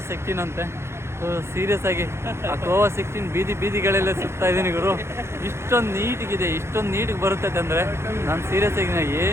16 ಅಂತೆ. ಸೊ ಸೀರಿಯಸ್ ಆಗಿ ಗೋವಾ 16 ಬೀದಿಗಳೆಲ್ಲ ಸುತ್ತಾ ಇದ್ದೀನಿ ಗುರು. ಇಷ್ಟೊಂದು ನೀಟಿಗೆ ಬರುತ್ತೈತೆ ಅಂದರೆ ನಾನು ಸೀರಿಯಸ್ ಆಗಿ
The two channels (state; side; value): late; left; 0.13 ms